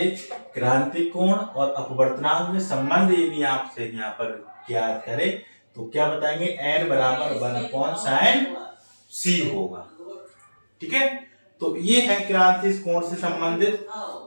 क्रांतिकोण और अपवर्तनांक में संबंध यदि आपसे यहाँ पर याद करे तो क्या बताएंगे, n बराबर 1/sin c होगा। ठीक है, तो ये है क्रांतिकोण से संबंधित।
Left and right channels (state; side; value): inverted; both; correlation -1.00